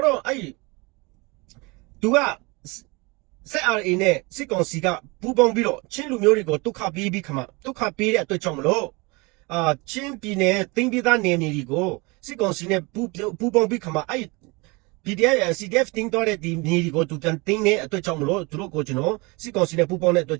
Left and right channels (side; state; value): left; quieter; 26.8 dB